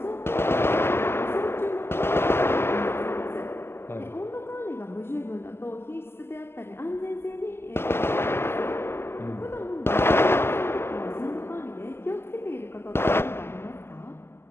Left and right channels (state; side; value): late; right; 0.12 ms